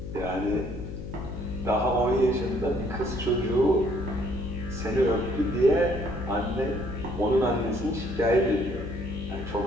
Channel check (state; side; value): noise; left; hum, 9 dB below the sound